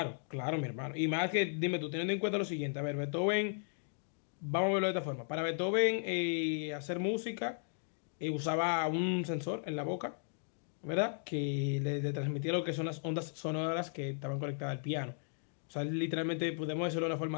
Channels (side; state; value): right; silent; digital silence